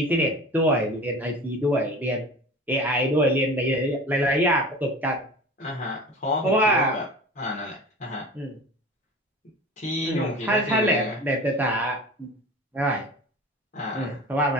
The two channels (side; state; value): both; normal; correlation 0.37